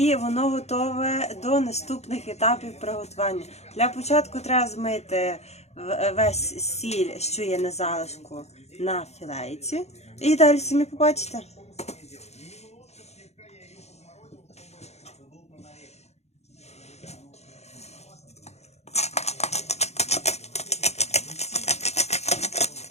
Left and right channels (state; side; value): late; right; 0.31 ms